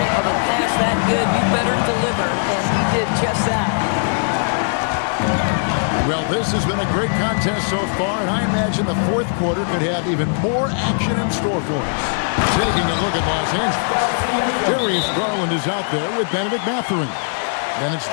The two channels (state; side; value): silent; right; digital silence